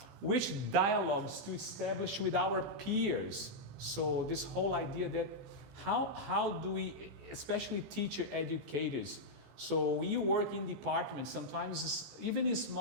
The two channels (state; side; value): normal; both; correlation -0.05